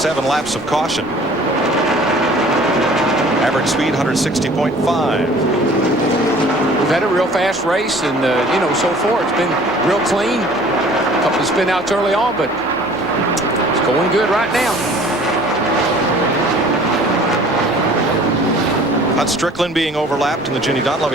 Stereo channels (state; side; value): normal; both; correlation 0.50